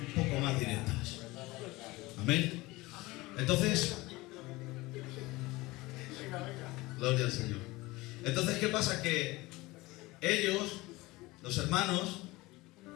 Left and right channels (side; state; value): right; quieter; 20.9 dB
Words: poco más directas. Amén. Entonces, gloria al Señor. Entonces, ¿qué pasa? Que ellos, los hermanos,